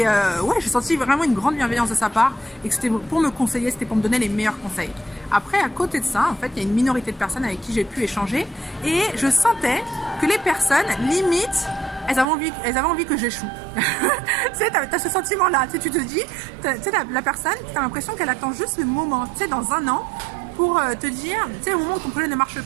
ouais, j'ai senti vraiment une grande bienveillance de sa part et que c'était pour me conseiller, c'était pour me donner les meilleurs conseils. Après, à côté de ça, en fait, il y a une minorité de personnes avec qui j'ai pu échanger et je sentais que les personnes, limite, elles avaient envie que j'échoue. Tu sais, t'as ce sentiment-là, tu sais, tu te dis, tu sais, la personne, t'as l'impression qu'elle attend juste le moment, tu sais, dans un an, pour te dire, tu sais, au moment où ton projet ne marche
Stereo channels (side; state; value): left; drops out; at 12.2 s